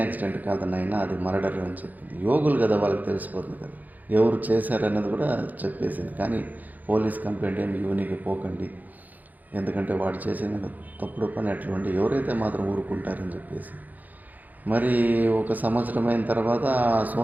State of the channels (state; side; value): late; left; 0.082 ms